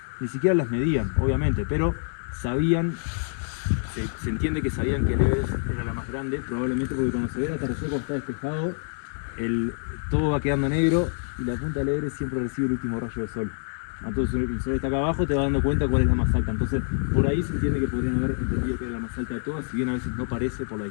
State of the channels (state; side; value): silent; right; 61 dB below the other